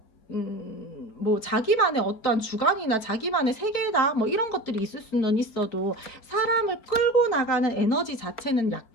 뭐 자기만의 어떤 주관이나 자기만의 세계다 뭐 이런 것들이 있을 수는 있어도 사람을 끌고 나가는 에너지 자체는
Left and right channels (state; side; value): late; right; 4.5 ms